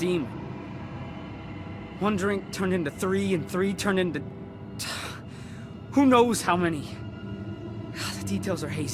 One drink turned into 3, and 3 turned into... who knows how many. The details are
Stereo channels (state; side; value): identical; both; correlation 1.00